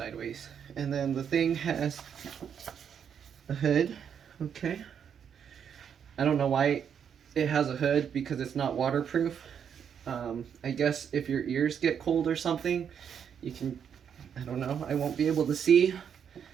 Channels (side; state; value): left; quieter; 7.9 dB